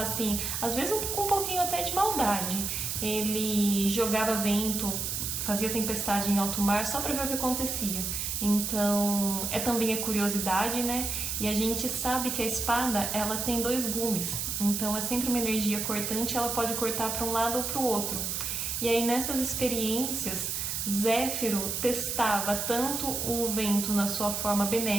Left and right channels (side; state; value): right; noise; hiss, 2 dB below the sound